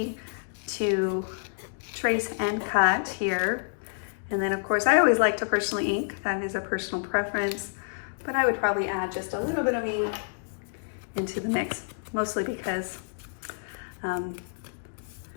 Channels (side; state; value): right; silent; digital silence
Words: to trace and cut here. And then of course, I always like to personally ink. That is a personal preference, but I would probably add just a little bit of ink into the mix, mostly because